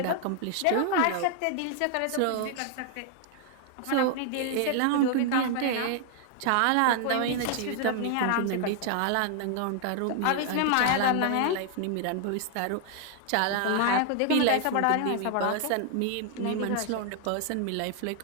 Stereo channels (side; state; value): both; different; correlation 0.00